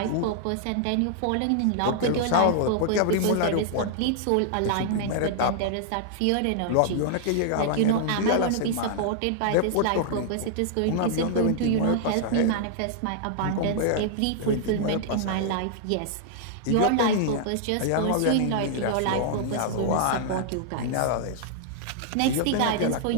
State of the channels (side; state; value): both; different; correlation -0.01